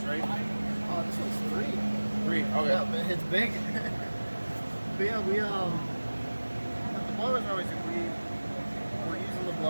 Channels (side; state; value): both; inverted; correlation -1.00